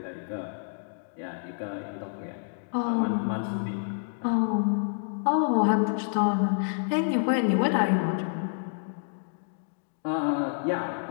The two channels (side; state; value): right; silent; digital silence